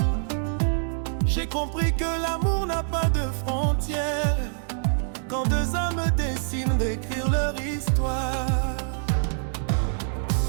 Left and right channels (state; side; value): silent; left; digital silence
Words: J'ai compris que l'amour n'a pas de frontières, quand deux âmes décident d'écrire leur histoire.